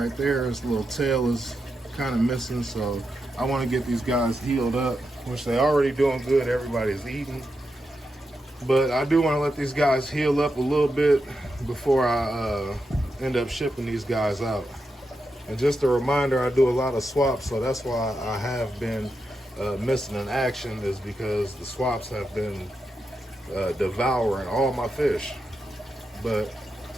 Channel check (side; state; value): both; normal; correlation 0.87